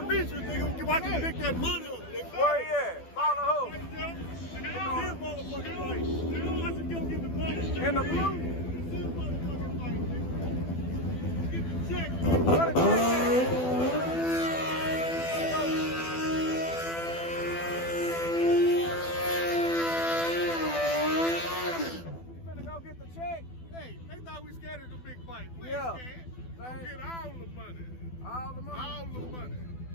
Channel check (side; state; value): right; late; 12 ms